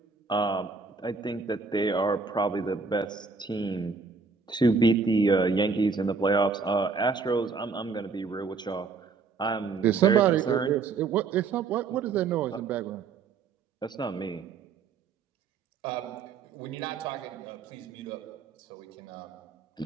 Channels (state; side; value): quieter; left; 4.8 dB